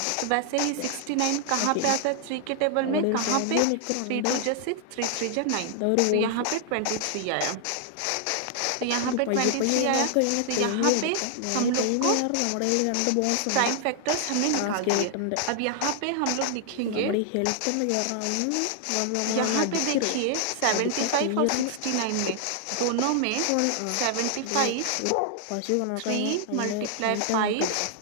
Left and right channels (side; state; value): both; different; correlation 0.00